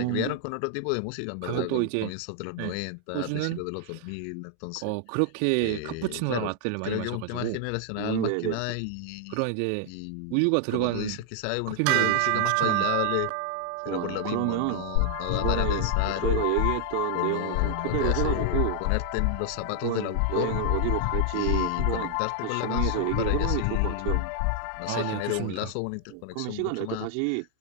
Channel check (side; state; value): both; different; correlation 0.00